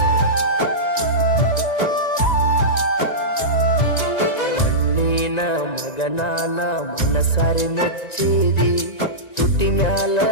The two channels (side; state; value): right; late; 1.9 ms